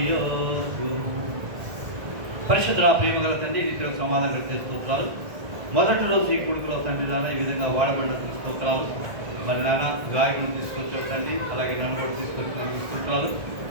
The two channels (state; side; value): late; left; 1.6 ms